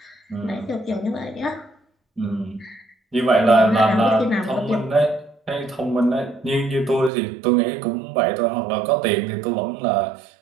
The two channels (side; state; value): left; drops out; at 7.1 s